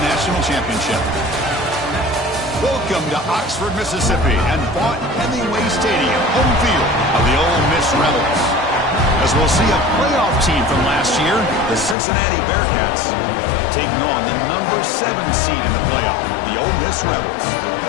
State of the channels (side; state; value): right; drops out; at 12.0 s